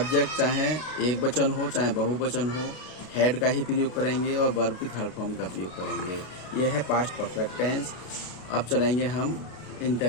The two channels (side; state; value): right; late; 33 ms